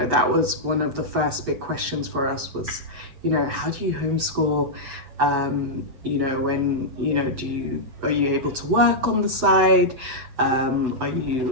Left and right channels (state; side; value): late; left; 7.9 ms